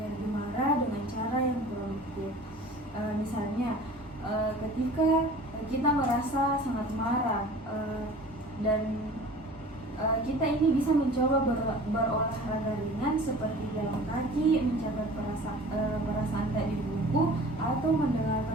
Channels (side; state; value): both; normal; correlation 0.43